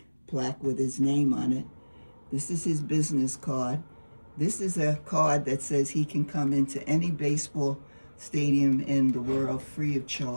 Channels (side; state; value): both; inverted; correlation -1.00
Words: plaque with his name on it. This is his business card. This is a card that says he can come into any baseball stadium in the world free of